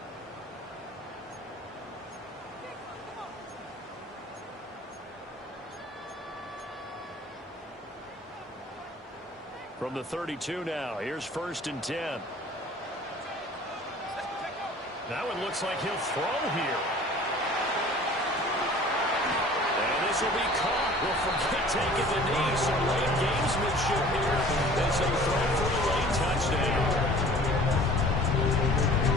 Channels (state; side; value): normal; both; correlation 0.48